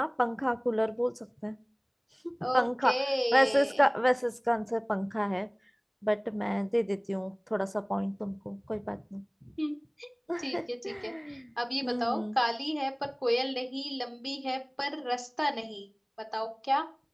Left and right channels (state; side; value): identical; both; correlation 1.00